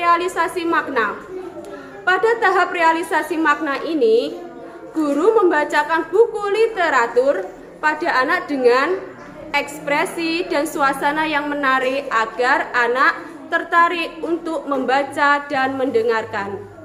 makna. Pada tahap realisasi makna ini, guru membacakan buku literatur pada anak dengan ekspresi dan suasana yang menarik agar anak tertarik untuk membaca dan mendengarkan.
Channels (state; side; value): identical; both; correlation 1.00